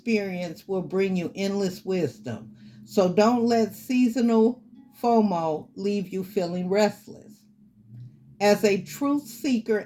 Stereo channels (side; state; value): both; identical; correlation 1.00